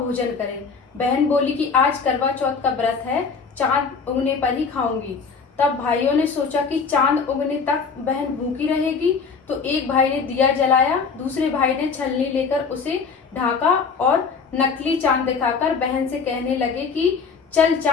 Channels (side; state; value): right; quieter; 5.3 dB